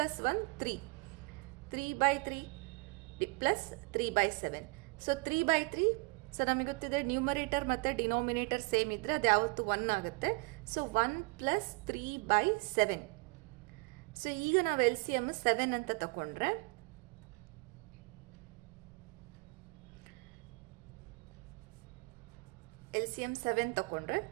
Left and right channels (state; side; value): quieter; left; 28.2 dB